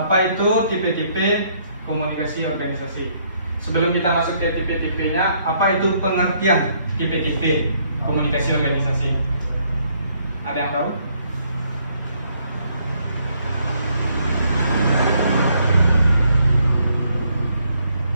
itu tipe-tipe komunikasi organisasi? Sebelum kita masuk ke tipe-tipenya, apa itu pengertian tipe-tipe komunikasi organisasi? Ada yang tahu?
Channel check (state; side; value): inverted; both; correlation -0.69